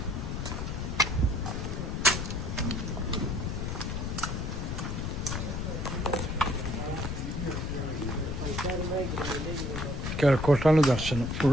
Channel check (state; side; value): noise; left; rumble, 3 dB below the sound